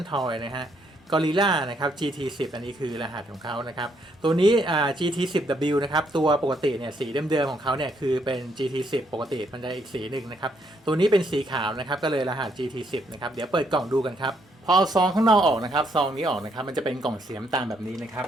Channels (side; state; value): both; normal; correlation 0.73